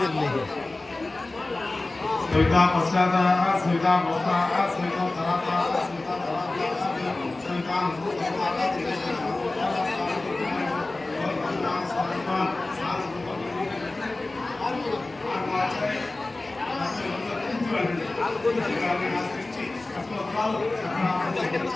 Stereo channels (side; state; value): right; quieter; 3.0 dB